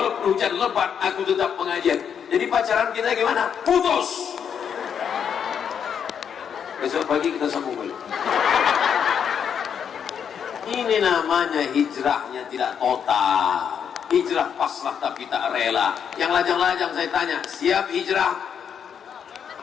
hujan lebat, aku tetap pengajian. Jadi pacaran kita gimana? Putus. Besok pagi kita sambung balik. Ini namanya hijrahnya tidak total. Hijrah pasrah tapi tak rela. Yang lajang-lajang saya tanya, siap hijrah?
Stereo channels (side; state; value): right; quieter; 7.8 dB